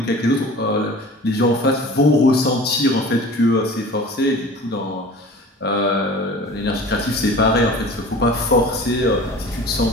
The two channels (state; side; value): normal; both; correlation 0.41